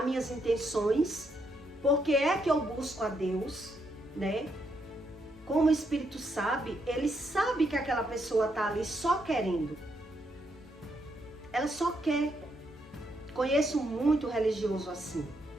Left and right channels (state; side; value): normal; both; correlation 0.77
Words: minhas intenções, porque é que eu busco a Deus, né? Como o Espírito sabe, ele sabe que aquela pessoa está ali só querendo. Ela só quer. Conheço muito religioso assim,